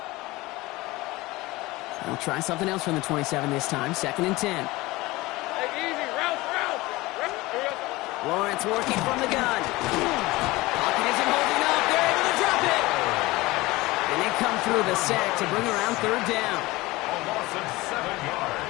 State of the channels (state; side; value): quieter; right; 20.5 dB